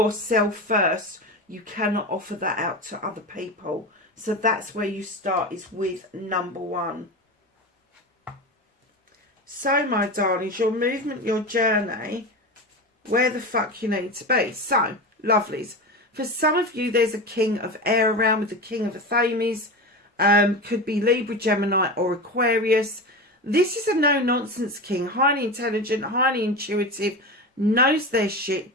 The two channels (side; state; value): both; normal; correlation 0.24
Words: first, you cannot offer that out to other people. So that's where you start, is with number 1. So, my darlings, your movement, your journey, where the fuck you need to be. So, lovelies. For some of you, there's a king of air around with the king of Athames. Could be Libra, Gemini or Aquarius. This is a no-nonsense king. Highly intelligent, highly intuitive, knows their